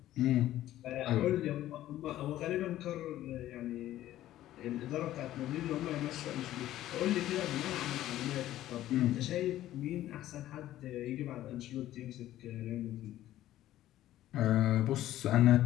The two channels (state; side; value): quieter; right; 13.8 dB